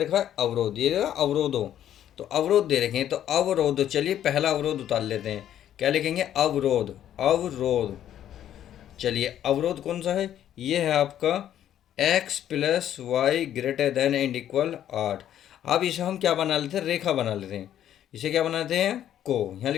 है? अवरोध। ये अवरोधों, तो अवरोध दे रखे हैं। तो अवरोध, चलिए पहला अवरोध उतार लेते हैं। क्या लिखेंगे? अवरोध। अवरोध, चलिए अवरोध कौन सा है? ये है आपका x+y greater than and equal 8। अब इसे हम क्या बना लेते हैं, रेखा बना लेते हैं। इसे क्या बनाते हैं, को। यहाँ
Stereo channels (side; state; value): right; quieter; 11.0 dB